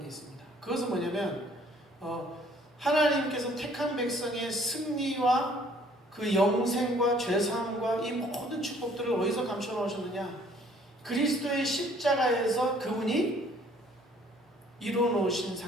게 있습니다. 그것은 뭐냐면 하나님께서 택한 백성의 승리와 그 영생과 죄사함과 이 모든 축복들을 어디서 감춰 놓으셨느냐? 그리스도의 십자가에서 그분이 이루어 놓으신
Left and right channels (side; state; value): both; normal; correlation 0.59